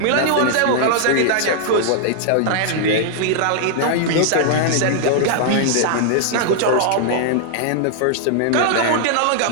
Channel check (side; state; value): both; different; correlation -0.01